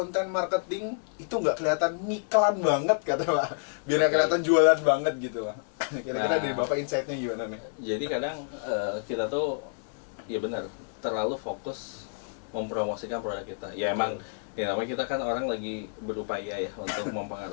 marketing itu nggak kelihatan ngiklan banget kata Pak. Biar nggak kelihatan jualan banget gitu Pak. Kira-kira dari Bapak insight-nya gimana nih? Jadi kadang kita tuh ya benar terlalu fokus mempromosikan produk kita. Ya emang ya namanya kita kan orang lagi berupaya ya untuk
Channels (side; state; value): right; silent; digital silence